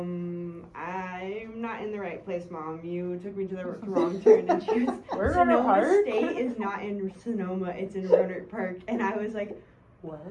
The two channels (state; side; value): identical; both; correlation 1.00